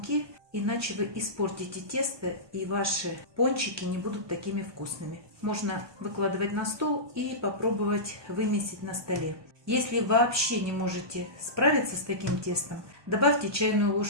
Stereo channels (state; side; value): late; left; 1.2 ms